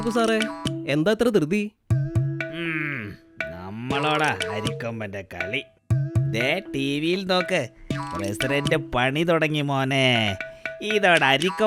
സാറേ, എന്താ ഇത്ര ധൃതി? നമ്മളോടാ അരിക്കൊമ്പന്റെ കളി. ദേ ടി വിയിൽ നോക്ക്, പ്രസിഡന്റ് പണി തുടങ്ങി മോനെ. ഇതോടെ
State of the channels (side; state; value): both; identical; correlation 1.00